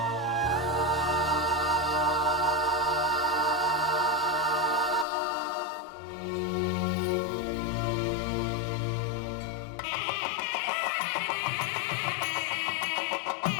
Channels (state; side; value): drops out; right; at 5.1 s